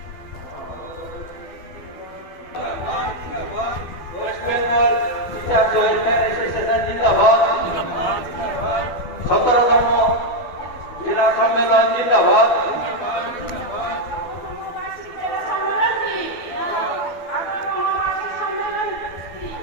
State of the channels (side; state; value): right; late; 12 ms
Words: West Bengal teachers welfare association জিন্দাবাদ। 17তম জেলা সম্মেলন জিন্দাবাদ।